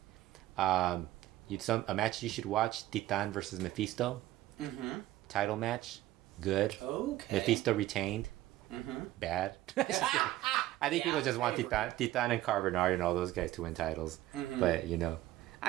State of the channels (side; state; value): left; quieter; 15.4 dB